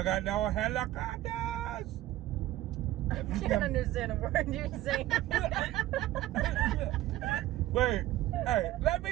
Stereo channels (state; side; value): quieter; left; 15.1 dB